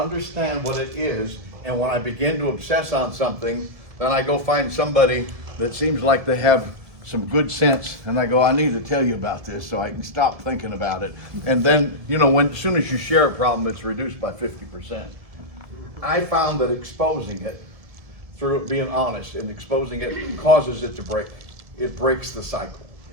what it is, and when I begin to obsess on something, then I go find somebody that seems like they have some good sense, and I go, I need to tell you about this so I can stop thinking about it. And then, you know, as soon as you share a problem, it's reduced by 50%. I found that exposing it, through it being honest and exposing it, causes it to break. It breaks the cycle.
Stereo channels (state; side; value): late; left; 1.7 ms